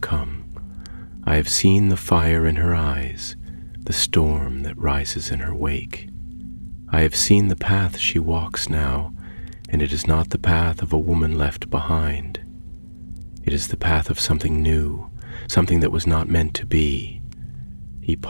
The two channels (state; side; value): inverted; both; correlation -1.00